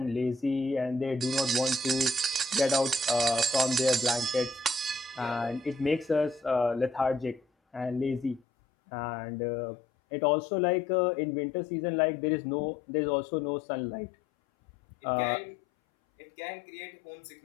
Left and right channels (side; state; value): right; drops out; at 8.4 s